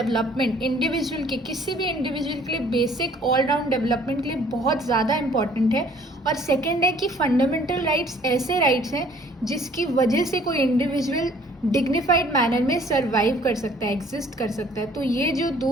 individual के, किसी भी इंडिविजुअल के लिए बेसिक ऑल राउंड डेवलपमेंट के लिए बहुत ज़्यादा इंपॉर्टेंट है. और सेकंड है कि फंडामेंटल राइट्स ऐसे राइट्स हैं जिसकी वजह से कोई इंडिविजुअल डिग्निफाइड मैनर में सर्वाइव कर सकता है, एग्जिस्ट कर सकता है. तो ये जो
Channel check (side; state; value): both; normal; correlation 0.57